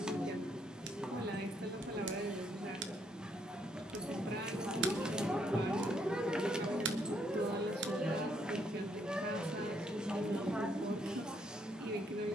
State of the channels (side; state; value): both; normal; correlation 0.72